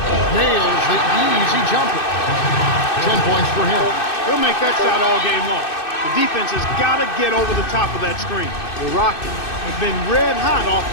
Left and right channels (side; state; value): right; late; 2.6 ms